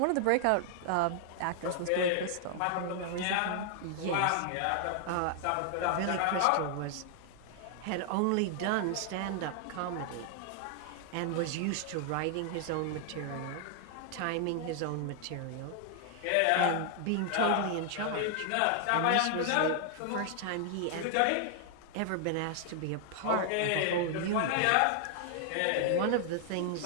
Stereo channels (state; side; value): different; both; correlation 0.00